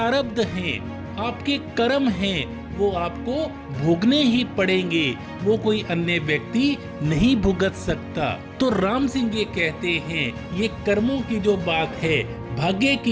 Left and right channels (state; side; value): identical; both; correlation 1.00